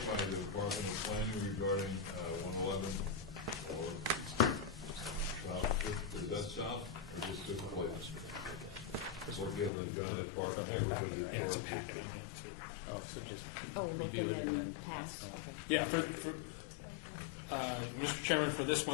by the Department of Planning regarding 111 or South Fifth. Is that south or just Fifth Place? Working on the John F. Park neighborhood. Yeah, it's a packet on it, too. Oh, so just Oh, review it and then pass it on. Yeah, Mr. Chairman, for this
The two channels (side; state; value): right; drops out; at 9.7 s